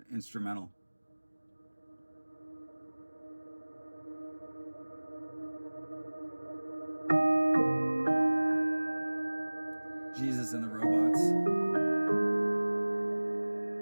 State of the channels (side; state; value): both; inverted; correlation -1.00